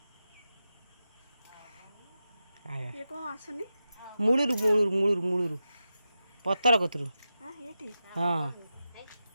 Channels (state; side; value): inverted; both; correlation -0.91